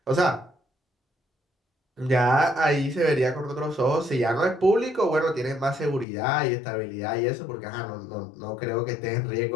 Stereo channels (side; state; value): right; drops out; at 6.1 s